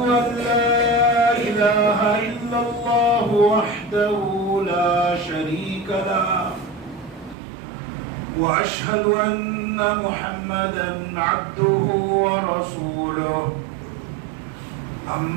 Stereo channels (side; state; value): left; drops out; at 7.4 s